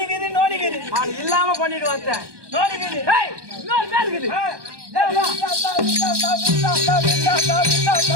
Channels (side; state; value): left; late; 1.2 ms